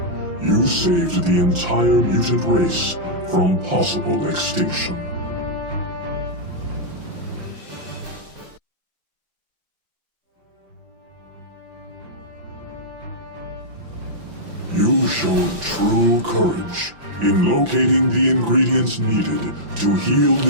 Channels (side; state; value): left; late; 5.8 ms